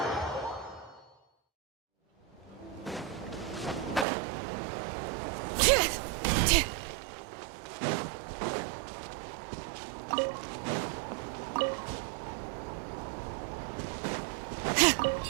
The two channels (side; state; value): left; drops out; at 4.0 s